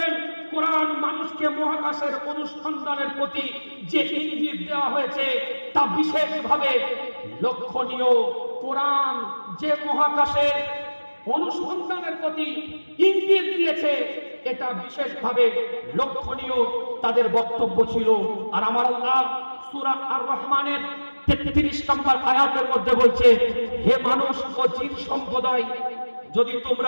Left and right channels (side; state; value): both; inverted; correlation -1.00